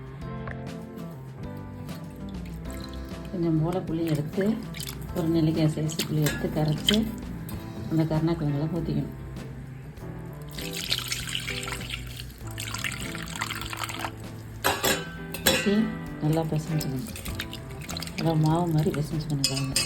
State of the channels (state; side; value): identical; both; correlation 1.00